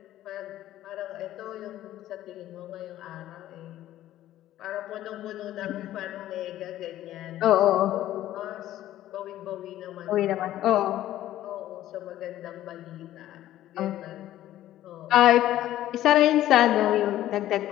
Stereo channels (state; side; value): quieter; right; 13.5 dB